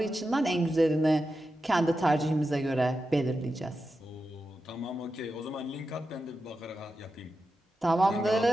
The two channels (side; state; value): both; normal; correlation 0.90